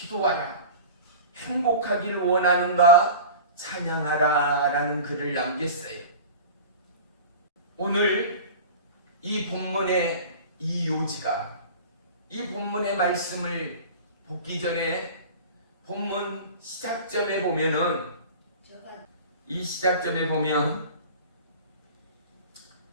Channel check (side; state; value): both; inverted; correlation -0.36